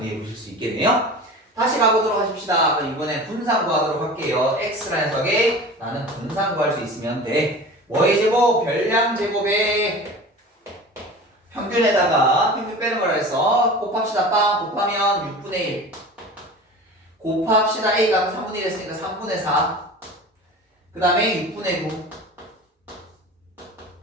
보실 수 있겠네요. 다시 가보도록 하십시다. 그럼 이번엔 분산 구하도록 할게요. x라는 녀석에 나는 분산 구할 수 있으면 돼. 뭐의 제곱? 별량 제곱에 평균에다가 평균 빼는 거라 해서 곱합시다. 빵 곱하면 6분의 1 곱합시다. a가 3분의 1 했으니까 3분의 4 그 다음에 6분의 9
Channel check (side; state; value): both; normal; correlation 0.36